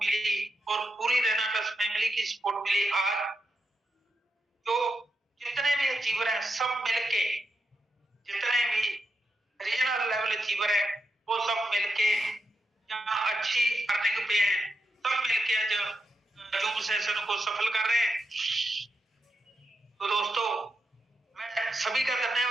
और पूरी रेनाटस फैमिली की सपोर्ट मिली। आज जो जितने भी अचीवर हैं सब मिलके जितने भी रीजनल अचीवर है वो सब मिलके जहाँ अच्छी अर्निंग पे हैं, सब मिलके आज जूम सेशन को सफल कर रहे हैं। तो दोस्तों मैं सभी का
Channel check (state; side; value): normal; both; correlation 0.85